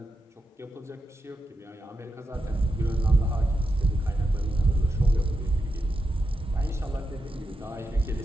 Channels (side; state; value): both; normal; correlation 0.87